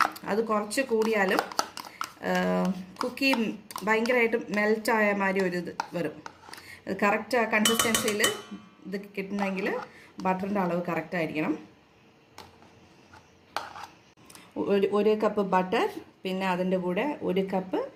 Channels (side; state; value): both; identical; correlation 1.00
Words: അത് കുറച്ച് കൂടിയാലും കുക്കി ഭയങ്കരമായിട്ട് മെൽറ്റായ മാതിരി ഒരു ഇത് വരും. ഇത് കറക്റ്റ് കൺസിസ്റ്റൻസിയിൽ ഇത് കിട്ടണമെങ്കിൽ ബട്ടറിൻ്റെ അളവ് കറക്റ്റായിരിക്കണം. 1 കപ്പ് ബട്ടർ, പിന്നെ അതിൻ്റെ കൂടെ 1 കപ്പ്